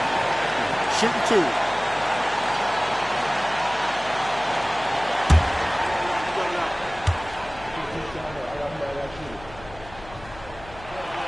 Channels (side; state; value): left; noise; hum, 18 dB below the sound